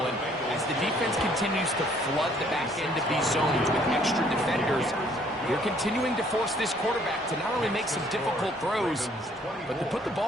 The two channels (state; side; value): normal; both; correlation 0.62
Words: And as the defense continues to flood the back end of these zones with extra defenders, you're continuing to force this quarterback to not only make some difficult throws, but to put the